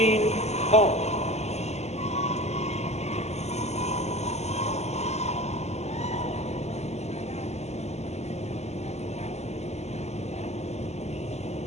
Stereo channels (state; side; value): late; right; 0.32 ms